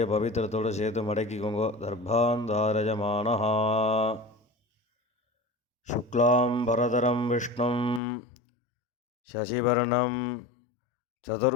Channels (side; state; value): right; drops out; at 8.0 s